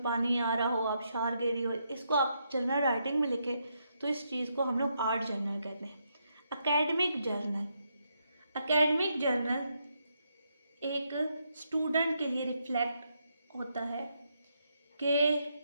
पानी आ रहा हो, आप शार गिरी हो, इसको आप जर्नल राइटिंग में लिखे, तो इस चीज़ को हम लोग आर्ट जर्नल कहते हैं। एकेडमिक जर्नल एक स्टूडेंट के लिए रिफ्लेक्ट होता है कि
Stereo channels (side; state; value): both; inverted; correlation -0.79